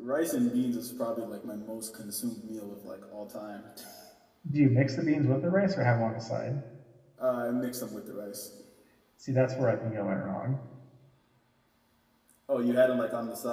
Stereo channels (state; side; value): identical; both; correlation 1.00